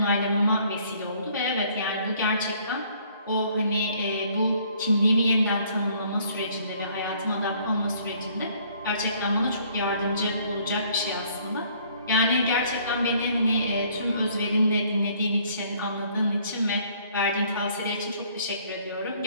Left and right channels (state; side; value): inverted; both; correlation -0.61